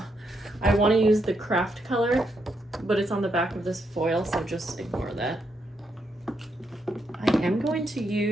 I want to use the craft color, but it's on the back of this foil, so just ignore that. I am going to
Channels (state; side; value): normal; both; correlation 0.79